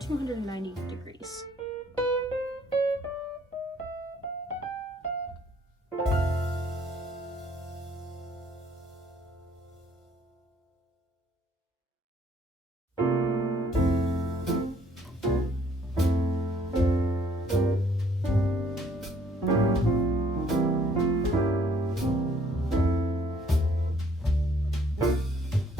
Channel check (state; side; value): normal; both; correlation 0.62